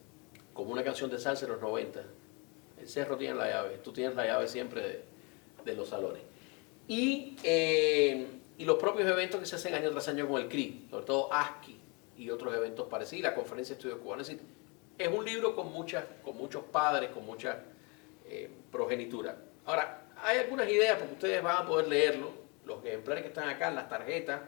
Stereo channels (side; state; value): right; quieter; 30.9 dB